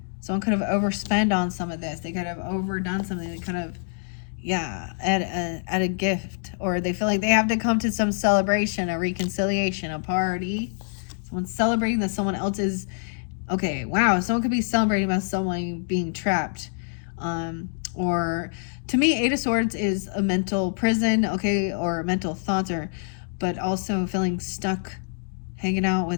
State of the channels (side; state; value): right; silent; digital silence